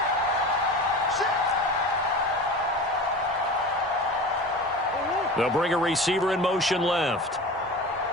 They'll bring a receiver in motion left.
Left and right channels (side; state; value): both; normal; correlation 0.33